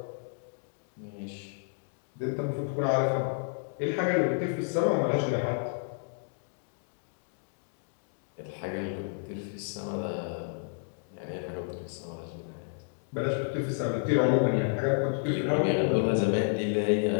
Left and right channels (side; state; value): right; silent; digital silence